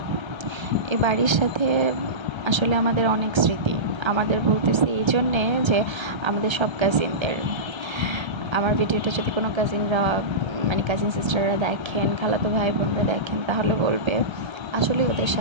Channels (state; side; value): late; left; 1.3 ms